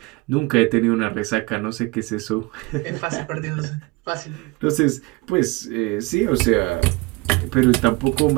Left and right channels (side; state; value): left; quieter; 24.8 dB